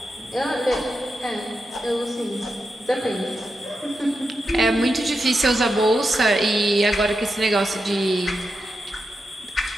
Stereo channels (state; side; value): normal; both; correlation 0.88